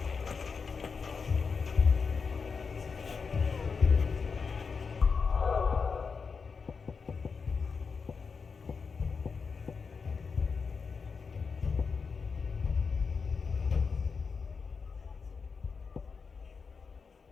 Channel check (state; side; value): quieter; right; 5.3 dB